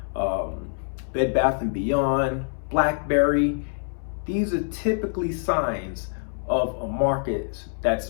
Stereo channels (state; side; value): silent; right; 61 dB below the other